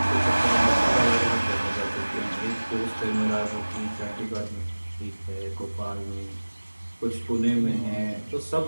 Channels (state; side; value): inverted; both; correlation -1.00